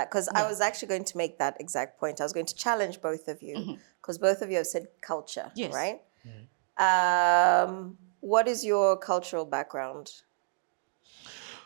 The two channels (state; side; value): silent; left; digital silence